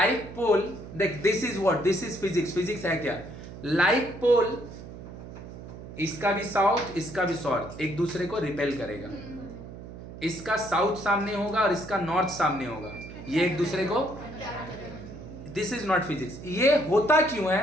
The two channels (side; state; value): right; noise; hum, 13 dB below the sound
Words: पोल, देख this is what, this is physics. Physics है क्या? लाइक पोल, इसका भी साउथ इसका भी साउथ एक दूसरे को रिपेल करेगा। इसका साउथ सामने होगा और इसका नॉर्थ सामने होगा, ये एक दूसरे को, दिस इज नॉट फिजिक्स। ये होता क्यों